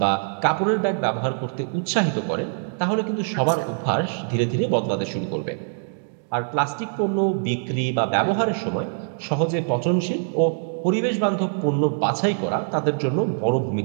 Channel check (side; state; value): left; silent; digital silence